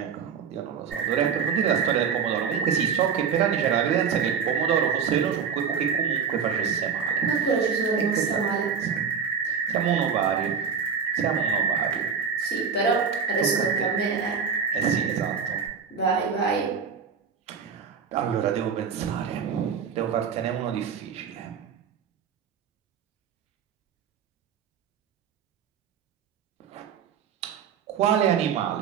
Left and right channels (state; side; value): quieter; left; 6.7 dB